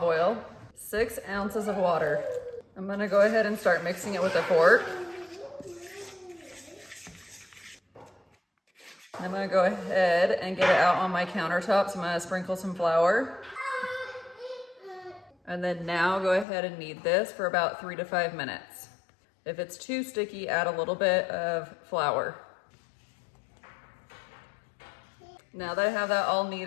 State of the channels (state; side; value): drops out; right; at 16.4 s